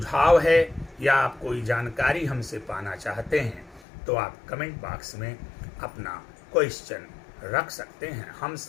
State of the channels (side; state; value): right; drops out; at 3.8 s